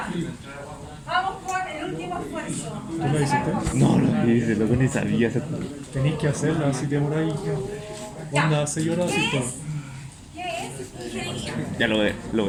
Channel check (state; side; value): identical; both; correlation 1.00